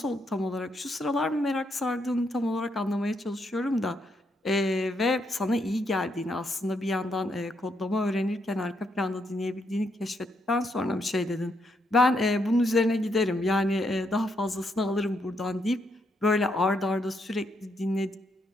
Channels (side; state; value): both; normal; correlation 0.77